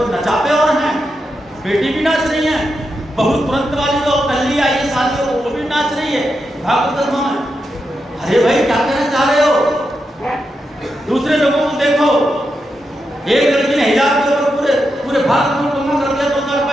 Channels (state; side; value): normal; both; correlation 0.86